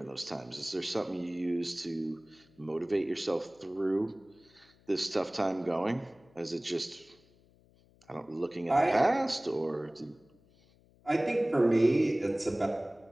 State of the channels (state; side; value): noise; left; hum, 30 dB below the sound